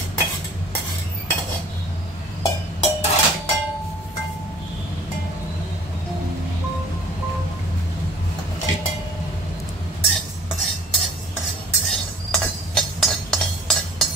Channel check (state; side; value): normal; both; correlation 0.50